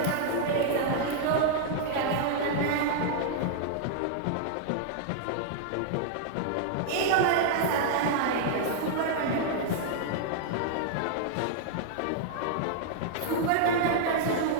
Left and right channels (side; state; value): both; different; correlation -0.01